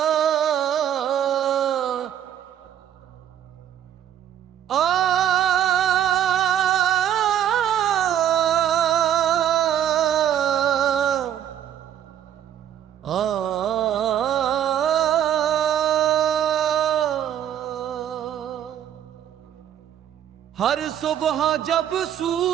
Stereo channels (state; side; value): quieter; left; 10.2 dB